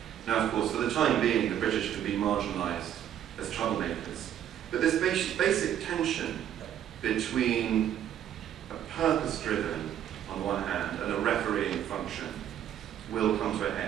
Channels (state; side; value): quieter; left; 10.5 dB